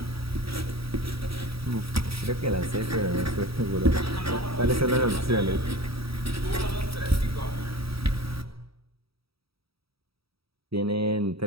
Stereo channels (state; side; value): late; left; 0.77 ms